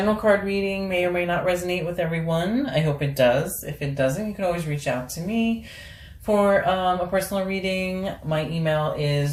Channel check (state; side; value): identical; both; correlation 1.00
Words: card reading. May or may not resonate with everyone. I hope it does. If it doesn't, you can always reach out to me for a personal reading. My email